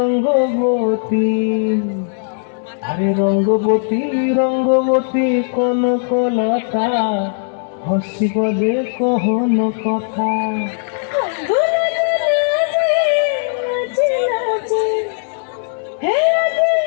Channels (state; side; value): silent; right; digital silence